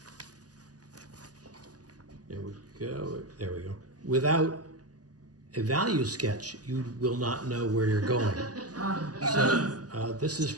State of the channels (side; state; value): left; late; 0.68 ms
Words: there we go, there we go. Without a value sketch, you will not know where you're going. So this is